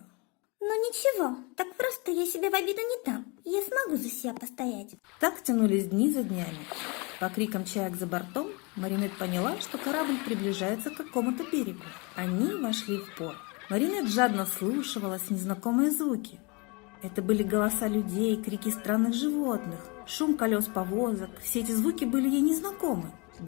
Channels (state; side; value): quieter; right; 29.3 dB